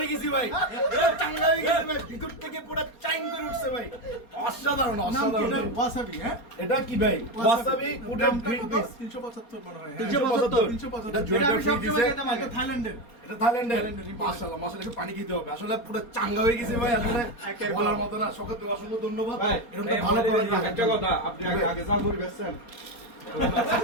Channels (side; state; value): right; late; 4.3 ms